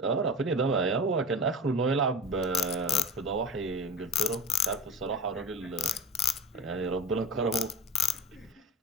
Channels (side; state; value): both; normal; correlation 0.30